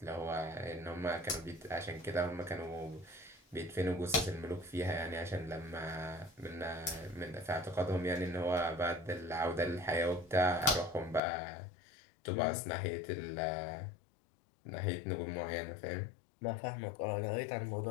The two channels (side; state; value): right; drops out; at 11.2 s